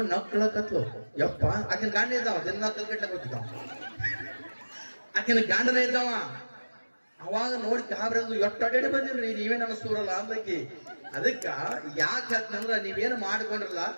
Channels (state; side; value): inverted; both; correlation -1.00